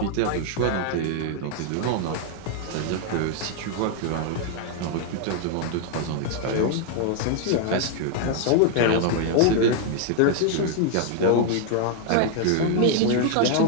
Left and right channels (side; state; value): both; different; correlation 0.00